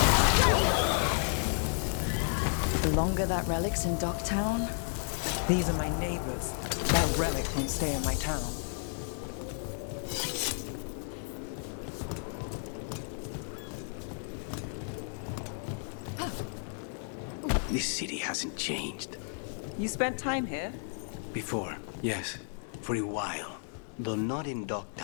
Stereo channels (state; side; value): silent; right; 56 dB below the other